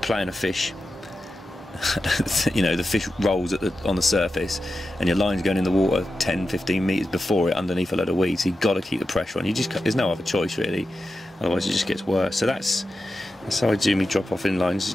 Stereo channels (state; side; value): normal; both; correlation 0.91